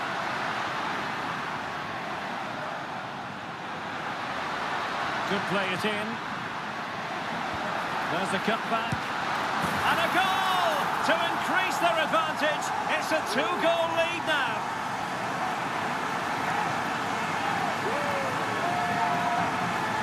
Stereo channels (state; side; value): identical; both; correlation 1.00